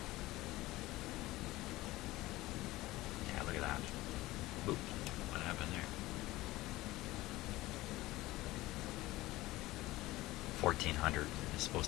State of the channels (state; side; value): quieter; right; 18.3 dB